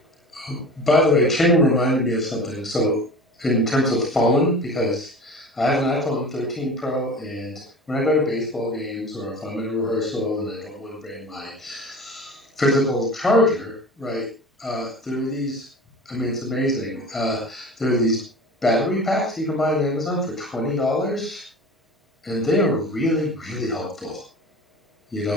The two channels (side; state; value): both; normal; correlation 0.38